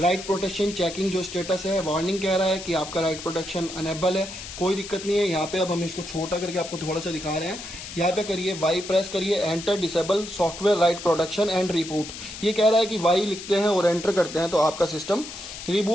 प्रोटेक्शन चेकिंग जो स्टेटस है, वार्निंग कह रहा है कि आपका राइट प्रोटेक्शन अनेबल है, कोई दिक्कत नहीं है। यहाँ पे अब हम इसको छोटा करके आपको थोड़ा सा दिखा रहे हैं। यहाँ पे करिए वाई प्रेस करिए, enter disable software right protection and reboot. ये कह रहा है कि वाई लिखते हैं और एंटर करते हैं तो आपका सिस्टम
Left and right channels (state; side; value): noise; left; hiss, 11 dB below the sound